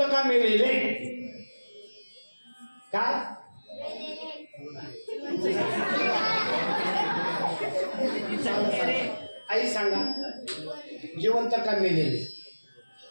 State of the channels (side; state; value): both; inverted; correlation -1.00